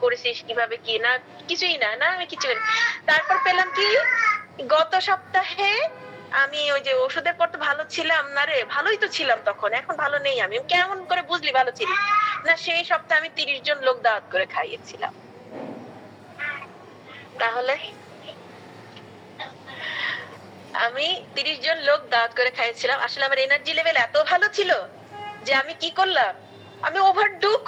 করেছিস কিভাবে, কি না কিছুই না, আমি কিছু করি। তারপর পেলাম কি গত সপ্তাহে আমি ওই যে ওষুধের পর তো ভালো ছিলাম না রে, ভালোই তো ছিলাম তখন, এখন ভালো নেই। আমি কেমন করে বুঝলি ভালো ছিলি না? সেই সপ্তাহে আমি 30 জন লোক দাওয়াত করে খাইয়েছিলাম। তাহলে আমি 30 জন লোক দাওয়াত করে খাইয়েছিলাম, আসলে আমার এনার্জি লেভেল এত ভালো ছিল যে আমি কি করলাম, আমি ওভারডু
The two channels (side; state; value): both; identical; correlation 1.00